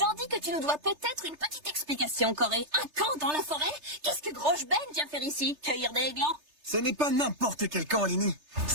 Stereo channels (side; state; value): left; late; 3.3 ms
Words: dis que tu nous dois peut-être une petite explication, Corée. Un camp dans la forêt? Qu'est-ce que Grosse Ben vient faire ici? Cueillir des glands? Ce n'est pas n'importe quel camp, Lenny.